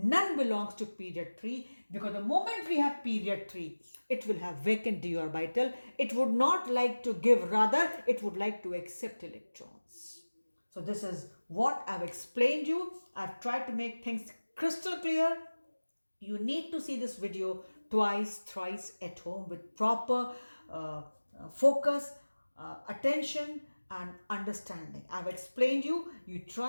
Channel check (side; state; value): both; inverted; correlation -1.00